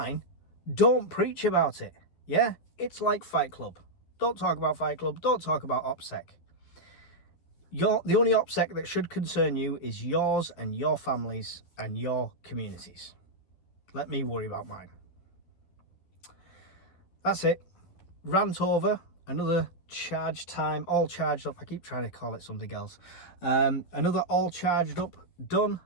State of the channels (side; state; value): right; late; 12 ms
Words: don't preach about it. Yeah? It's like Fight Club. Don't talk about Fight Club. Don't talk about OPSEC. The only OPSEC that should concern you is yours and your families and your communities. Let me worry about mine. That's it. Rant over. Another charge time. All charged up. I keep trying to call it something else. Another all charged up. Done.